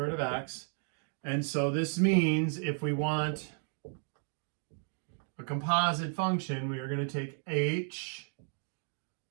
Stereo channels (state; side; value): silent; left; 55 dB below the other